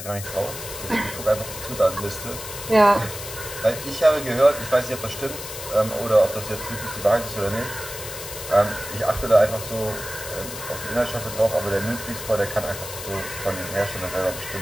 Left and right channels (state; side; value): noise; left; hiss, 10 dB below the sound